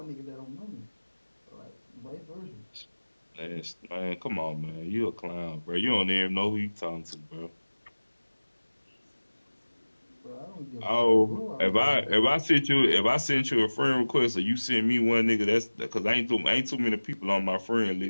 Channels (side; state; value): both; inverted; correlation -1.00